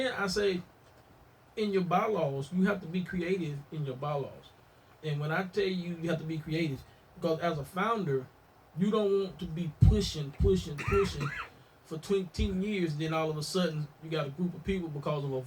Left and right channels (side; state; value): both; identical; correlation 1.00